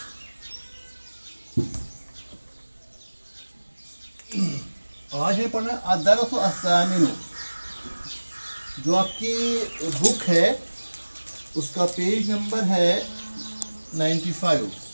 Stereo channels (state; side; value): inverted; both; correlation -1.00